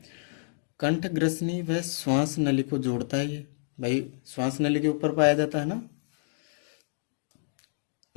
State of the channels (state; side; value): silent; right; digital silence